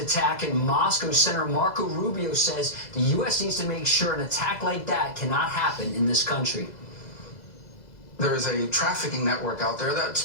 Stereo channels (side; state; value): right; late; 2.0 ms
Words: in Moscow, Senator Marco Rubio says the U.S. needs to make sure an attack like that cannot happen in this country. There is a trafficking network out there that